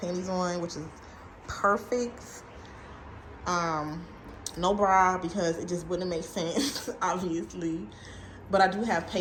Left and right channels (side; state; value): both; identical; correlation 1.00